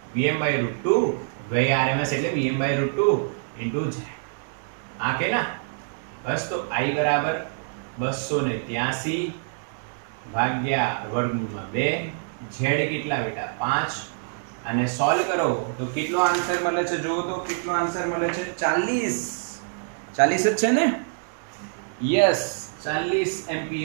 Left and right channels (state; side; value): silent; left; digital silence